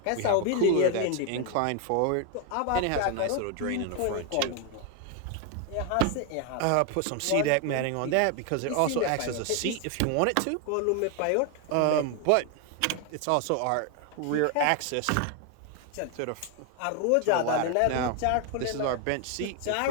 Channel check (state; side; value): different; both; correlation 0.01